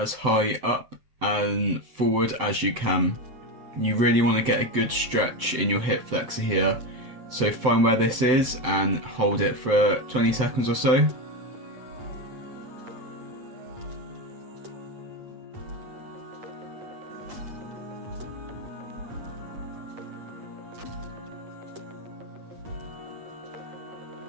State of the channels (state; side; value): late; left; 7.7 ms